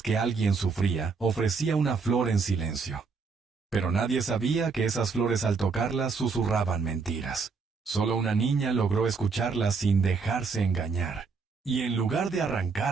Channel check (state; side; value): quieter; left; 4.9 dB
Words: que alguien sufría, ofrecía una flor en silencio. Pero nadie sabía que esas flores al tocarlas susurraban mentiras. Solo una niña logró escucharlas sin dejarse engañar. Y en lugar de